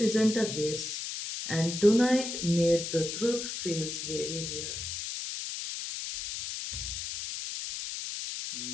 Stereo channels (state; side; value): noise; left; hiss, 5 dB below the sound